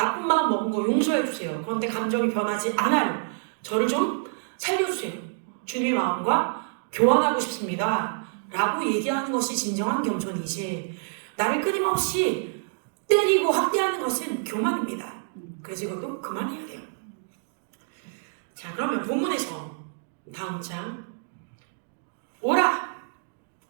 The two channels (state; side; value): silent; left; digital silence